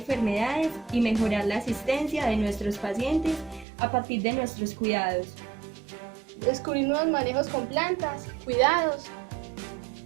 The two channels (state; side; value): drops out; left; at 3.7 s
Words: y mejorar la asistencia de nuestros pacientes a partir de nuestros cuidados. Descubrir nuevos manejos con plantas, cuidados.